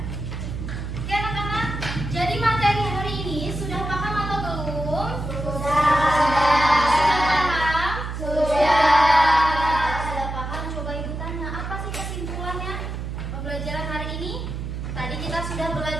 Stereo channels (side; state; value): right; noise; hum, 6 dB below the sound